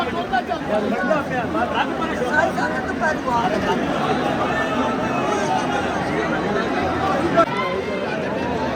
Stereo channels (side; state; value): both; identical; correlation 1.00